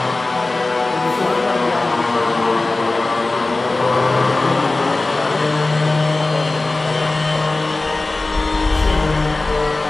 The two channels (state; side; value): quieter; right; 3.2 dB